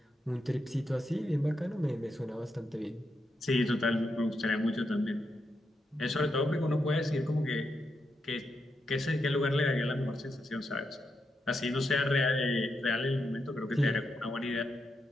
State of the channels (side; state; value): both; normal; correlation 0.84